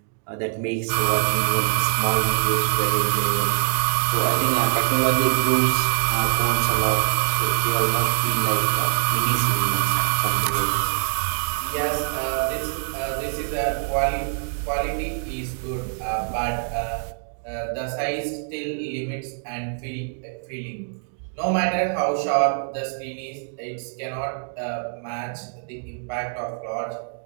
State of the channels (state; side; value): silent; left; digital silence